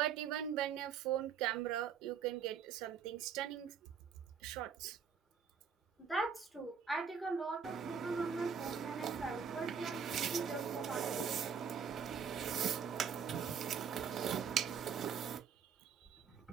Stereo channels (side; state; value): left; quieter; 6.9 dB